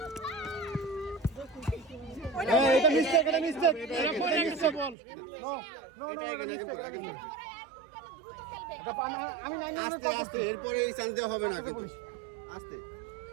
এটা মিস্টেক বল এটা আগে করে আস্তে আস্তে এরপরে এই চান্স দেওয়া হবে না কিন্তু আস্তে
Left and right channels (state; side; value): drops out; left; at 5.0 s